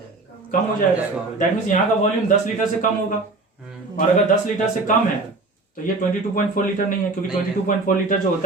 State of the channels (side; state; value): left; quieter; 3.3 dB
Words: कम हो जाएगा। दैट मीन्स यहाँ का वॉल्यूम 10 लीटर से कम होगा। और अगर 10 लीटर से कम है तो ये 22.4 लीटर नहीं है, क्योंकि 22.4 लीटर जो